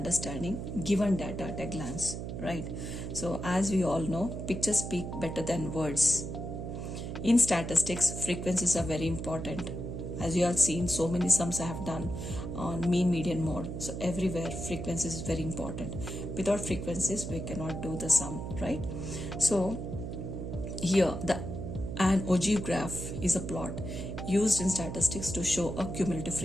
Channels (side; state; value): right; noise; hum, 6 dB below the sound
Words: given data at a glance, right? So as we all know, pictures speak better than words. In statistics, frequencies are very important. As you have seen, so many sums I have done on mean, median, mode. So everywhere frequencies is very important. Without frequencies, we cannot do the sum, right? So here an ogive graph is a plot used in statistics to show a cumulative